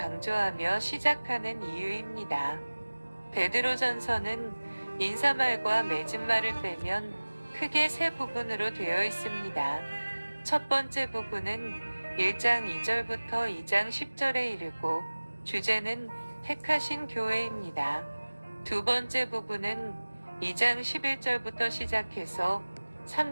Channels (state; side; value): inverted; both; correlation -1.00